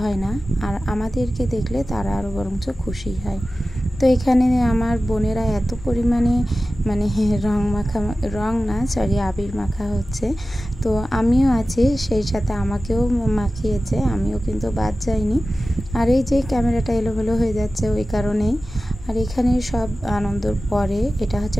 হয় না, আর আমাদেরকে দেখলে তারা আরও বরঞ্চ খুশি হয়। তো এখানে আমার বোনেরা এত পরিমাণে আবির মাখা হচ্ছে। তো আমিও আছি, সেই সাথে আমাকেও মাখিয়েছে, আমিও কিন্তু বাদ যাইনি। আর এই যে ক্যামেরাটা এলোমেলো হয়ে যাচ্ছে ওই কারণেই। আর এখানে সব আনন্দর পরে, এটা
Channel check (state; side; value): normal; both; correlation 0.95